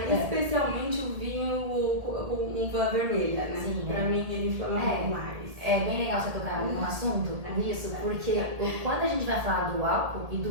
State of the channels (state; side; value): late; left; 1.8 ms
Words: especialmente o vinho com uva vermelha, né? Sim, pra mim ele inflama mais. É bem legal você tocar num assunto nisso, porque quando a gente vai falar do álcool e